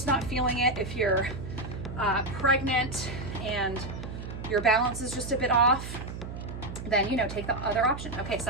not feeling it, if you're pregnant and your balance is just a bit off, then, you know, take the other option. Okay,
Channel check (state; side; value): noise; right; hum, 9 dB below the sound